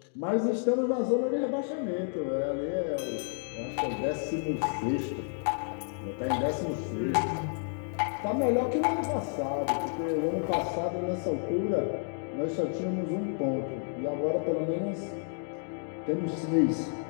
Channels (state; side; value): silent; right; 57 dB below the other